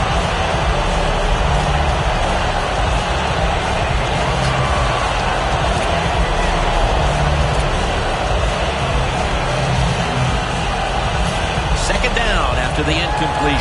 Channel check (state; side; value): identical; both; correlation 1.00